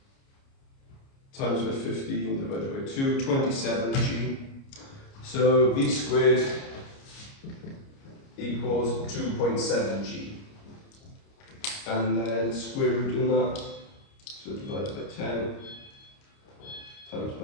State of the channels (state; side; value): late; right; 29 ms